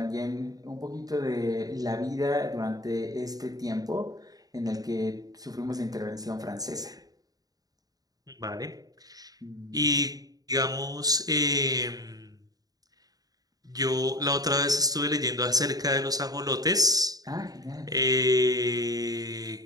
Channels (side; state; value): left; late; 0.18 ms